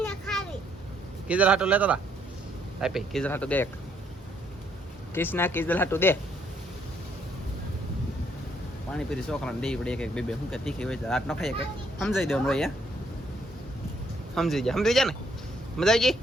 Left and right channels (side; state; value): both; normal; correlation 0.69